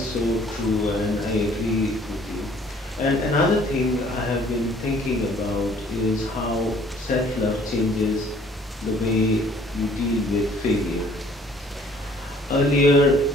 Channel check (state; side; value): normal; both; correlation 0.57